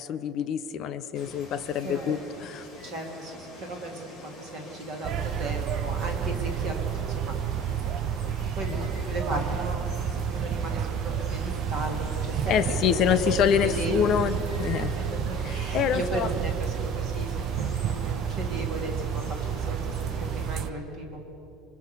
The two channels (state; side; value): normal; both; correlation 0.43